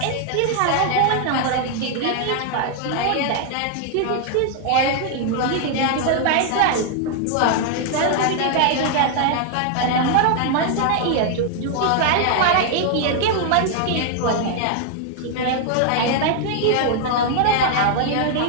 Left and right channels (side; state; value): both; different; correlation 0.00